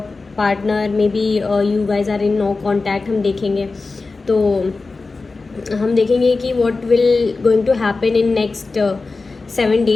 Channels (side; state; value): right; quieter; 3.8 dB